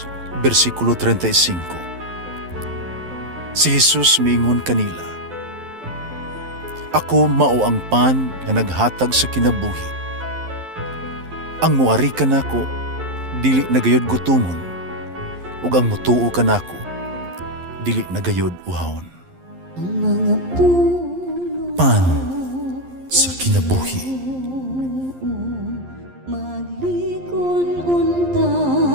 versikulo 35. Si Jesus miingon kanila, "Ako mao ang pan nga naghatag sa kinabuhi. Ang muari kanako dili nagayod gutomon, ug ang mutuo kanako dili nagayod uhawon." Pan sa kinabuhi.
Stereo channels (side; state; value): left; late; 11 ms